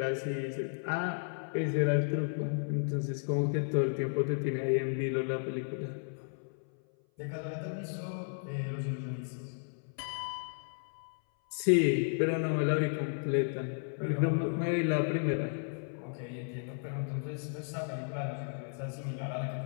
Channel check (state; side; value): silent; right; 55 dB below the other